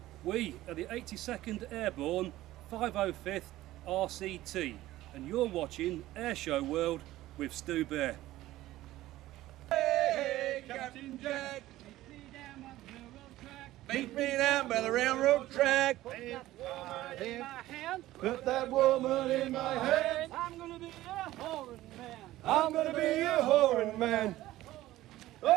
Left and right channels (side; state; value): left; quieter; 15.8 dB